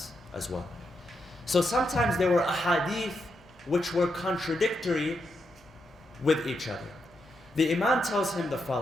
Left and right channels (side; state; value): both; normal; correlation 0.83